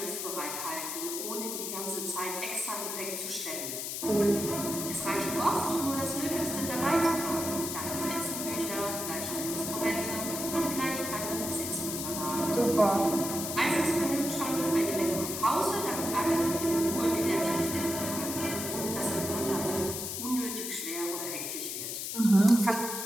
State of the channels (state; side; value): noise; left; hiss, 4 dB below the sound